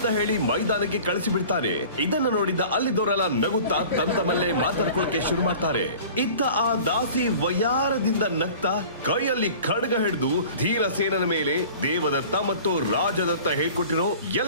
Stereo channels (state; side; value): inverted; both; correlation -0.43